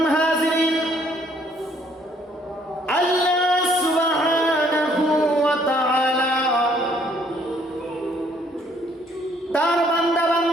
হাজিরিন, আল্লাহ সুবহানাহু ওয়া তাআলা তার বান্দা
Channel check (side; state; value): both; normal; correlation 0.64